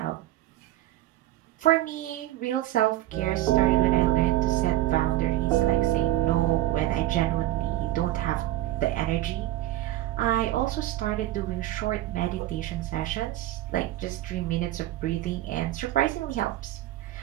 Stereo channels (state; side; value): quieter; left; 15.1 dB